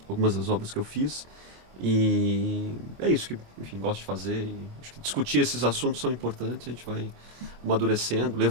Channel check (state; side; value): late; left; 24 ms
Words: algumas das obras que eu fiz. E é isso que, enfim, gosto de fazer. Acho que discutir esses assuntos são importantes, a gente vai amadurecendo,